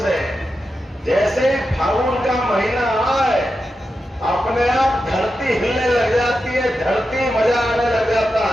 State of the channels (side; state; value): both; normal; correlation 0.89